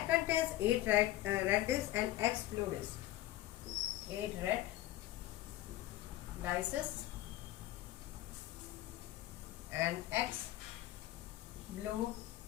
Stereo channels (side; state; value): right; quieter; 15.3 dB